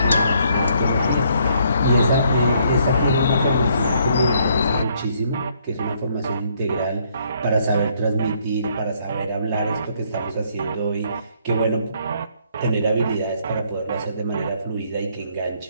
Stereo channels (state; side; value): inverted; both; correlation -0.68